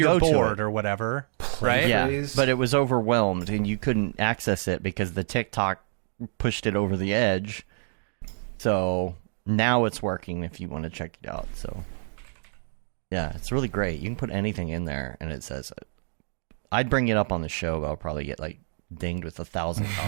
board or whatever, right? Yeah, but it was overwhelmed, and you couldn't access it because the TikTok pushed it over the edge. So now it's working if you want to check it out. So yeah, it's really great. You can put anything in there, and it says it. I'd bring it up on the show, but I'll probably get like dinged with 1,000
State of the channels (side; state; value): left; silent; digital silence